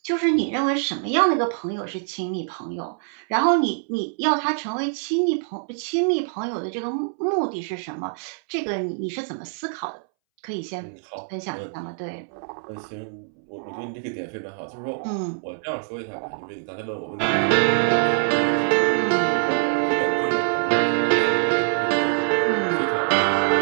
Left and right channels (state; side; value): silent; left; 62 dB below the other